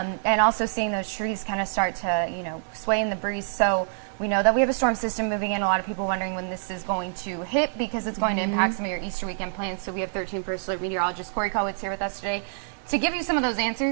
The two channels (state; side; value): silent; left; digital silence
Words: also seeing those trees kind of start to, sway in the breeze. So we know that we have a storm system moving in. A lot of people wondering when this is going to hit because it's going to impact some of your Easter weekend plans. So we have 13 First Alert meteorologist Corey Kowitz here with us today to give you some of those